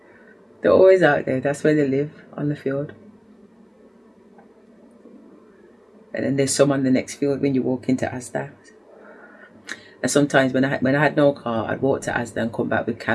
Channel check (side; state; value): both; identical; correlation 1.00